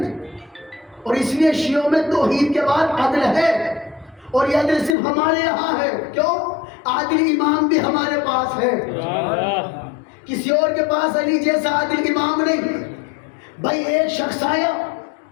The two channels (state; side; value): drops out; right; at 5.0 s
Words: اور اس لیے شیعوں میں توحید کے بعد عدل ہے، اور یہ عدل صرف ہمارے یہاں ہے، کیوں؟ عادل امام بھی ہمارے پاس ہے، کسی اور کے پاس علی جیسا عادل امام نہیں۔ بھائی ایک شخص آیا